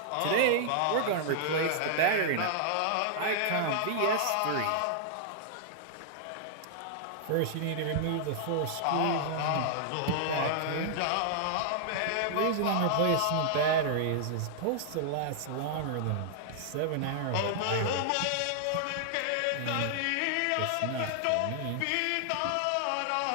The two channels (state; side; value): different; both; correlation -0.01